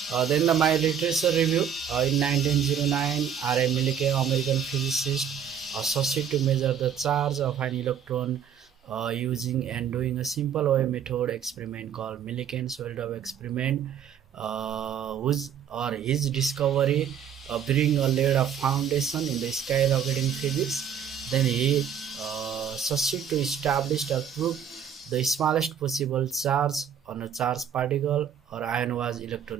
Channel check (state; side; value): quieter; left; 8.3 dB